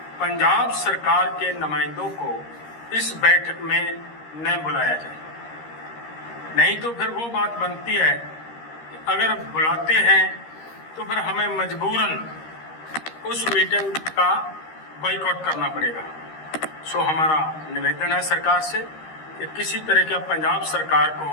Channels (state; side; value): late; right; 13 ms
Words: पंजाब सरकार के नुमाइंदों को इस बैठक में न बुलाया जाए। नहीं तो फिर वो बात बनती है कि अगर बुलाते हैं तो फिर हमें मजबूरन उस मीटिंग का बाइकआउट करना पड़ेगा। सो हमारा निवेदन है सरकार से कि किसी तरह का पंजाब सरकार